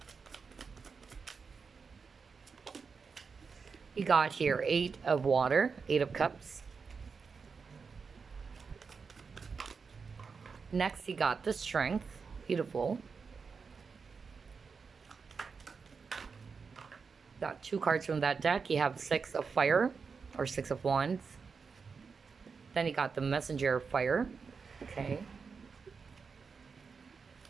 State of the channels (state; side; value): quieter; left; 5.3 dB